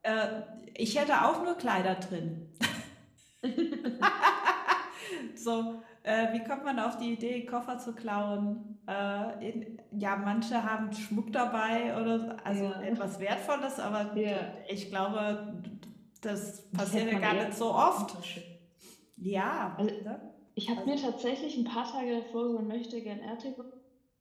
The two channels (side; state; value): both; identical; correlation 1.00